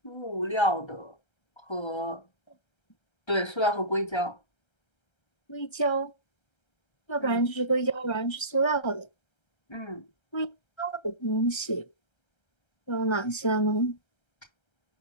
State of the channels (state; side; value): late; right; 1.3 ms